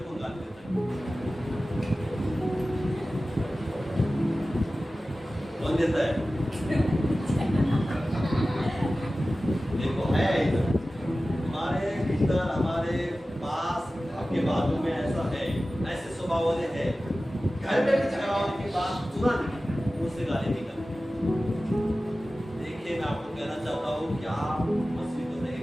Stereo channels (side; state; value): both; normal; correlation 0.96